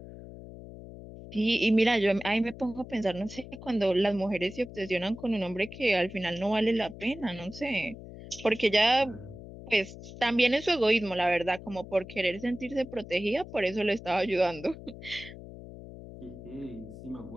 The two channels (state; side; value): noise; left; hum, 14 dB below the sound